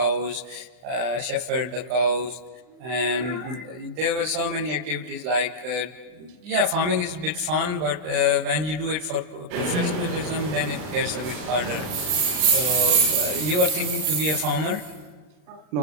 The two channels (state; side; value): late; left; 40 ms